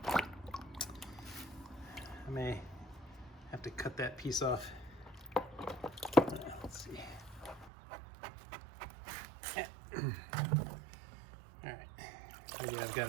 may have to cut that piece off. Let's see. All right, maybe I've got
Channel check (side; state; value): left; drops out; at 7.7 s